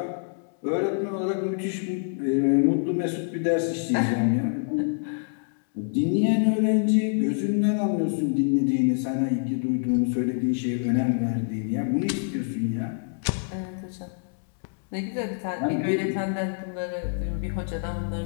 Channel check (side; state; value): right; silent; digital silence